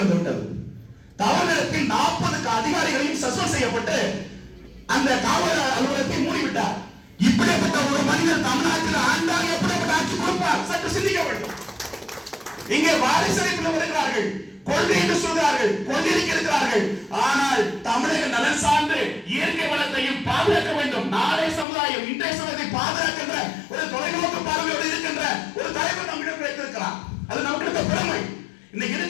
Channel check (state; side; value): drops out; right; at 21.7 s